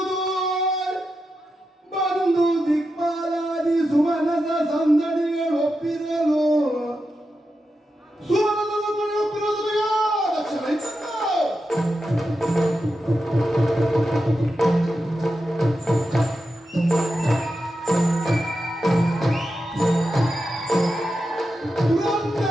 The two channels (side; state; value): both; normal; correlation 0.88